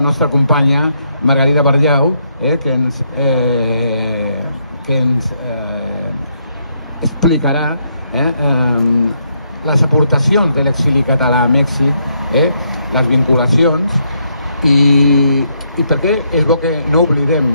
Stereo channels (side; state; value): both; inverted; correlation -0.76